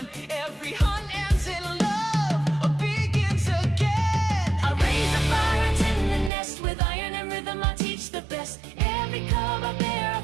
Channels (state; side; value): drops out; left; at 6.3 s